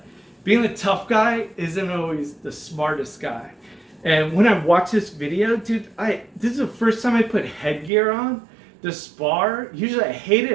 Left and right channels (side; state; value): left; drops out; at 7.9 s